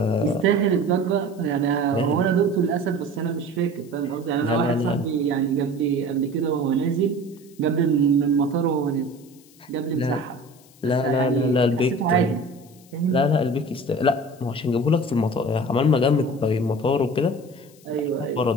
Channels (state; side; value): noise; left; hiss, 27 dB below the sound